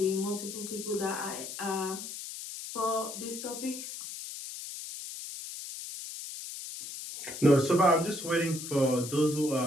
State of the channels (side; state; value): left; noise; hiss, 9 dB below the sound